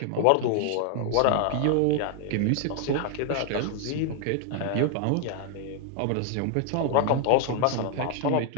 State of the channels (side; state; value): both; different; correlation 0.00